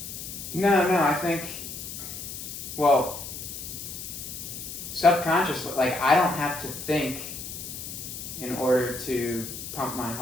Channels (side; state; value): left; noise; hiss, 9 dB below the sound